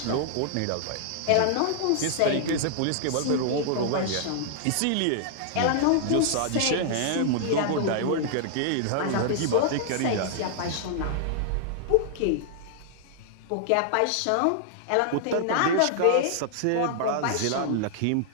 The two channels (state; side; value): different; both; correlation -0.01